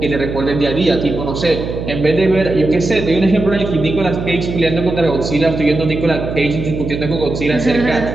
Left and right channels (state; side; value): noise; right; hum, 6 dB below the sound